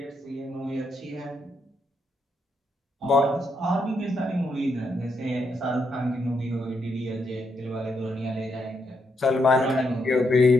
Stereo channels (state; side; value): normal; both; correlation 0.79